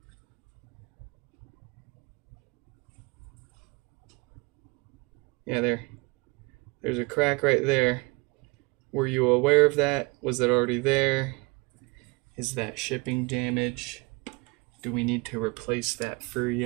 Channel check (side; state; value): left; quieter; 27.0 dB